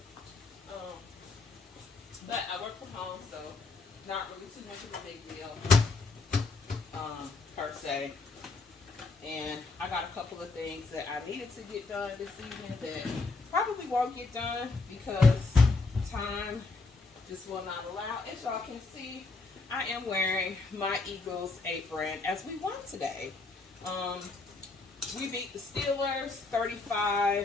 But I work from home, so not really too much of a big deal per se. And I got a couple of things that I needed to get done this evening that probably won't get done because time just will not allow. As y'all can see, I am wearing my Eagles apron as we won today. We beat the Steelers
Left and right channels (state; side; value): quieter; right; 3.7 dB